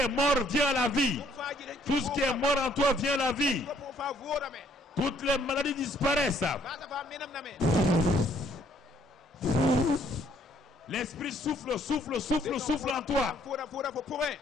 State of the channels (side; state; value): both; normal; correlation 0.65